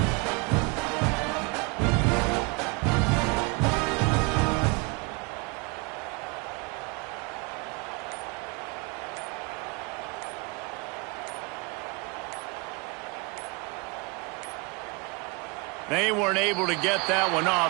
They weren't able to get that one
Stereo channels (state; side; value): quieter; left; 28.7 dB